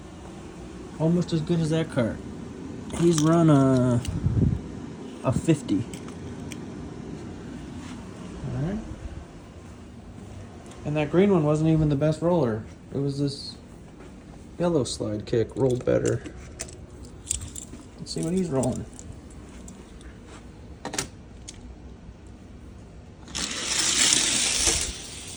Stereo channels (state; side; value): identical; both; correlation 1.00